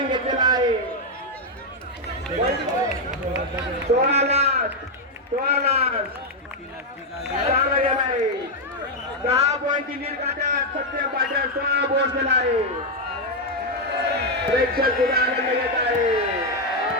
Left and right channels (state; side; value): normal; both; correlation 0.01